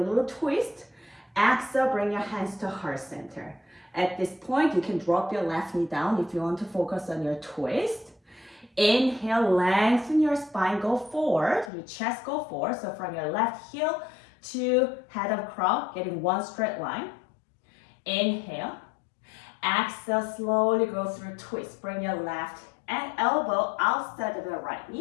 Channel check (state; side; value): drops out; right; at 11.7 s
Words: a little twist. Exhale, bring your hands to heart center. At this point, you can drop your left knee down if you want to focus on your twist. Inhale, lengthen your spine, go forward, your chest go forward. So from your left heel to head of crown, getting one straight line. Inhale. Exhale, slowly go through twist. Bring your left and elbow outside of your right